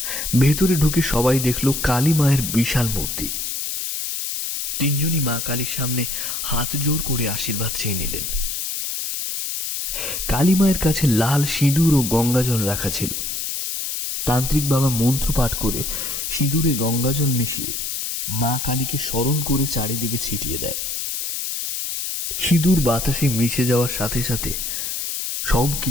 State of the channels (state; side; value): noise; left; hiss, 3 dB below the sound